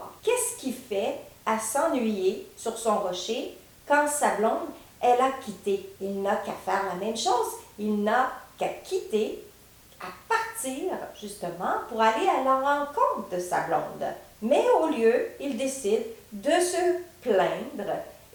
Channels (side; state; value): both; identical; correlation 1.00